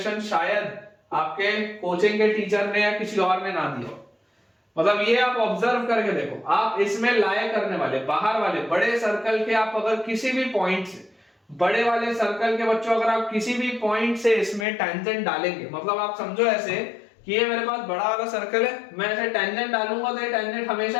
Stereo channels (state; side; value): drops out; right; at 14.7 s